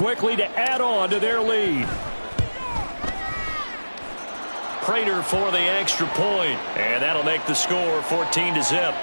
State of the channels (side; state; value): both; inverted; correlation -1.00